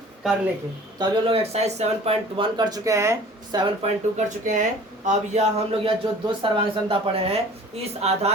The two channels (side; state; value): both; normal; correlation 0.46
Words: करने के। तो अभी हम लोग एक्सरसाइज 7.1 कर चुके हैं, 7.2 कर चुके हैं। अब यह हम लोग यह जो दो सर्वांग समता पढ़े हैं, इस